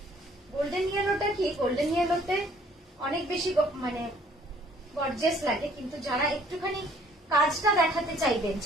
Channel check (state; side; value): normal; both; correlation 0.59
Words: গোল্ডেন ইয়েলোটা কি, গোল্ডেন ইয়েলোতে অনেক বেশি মানে গর্জিয়াস লাগে, কিন্তু যারা একটুখানি কাজটা দেখাতে চাইবেন